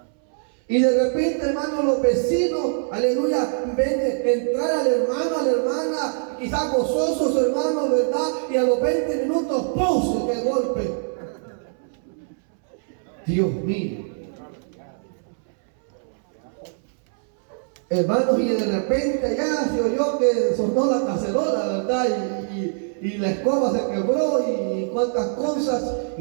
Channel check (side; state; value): left; silent; 63 dB below the other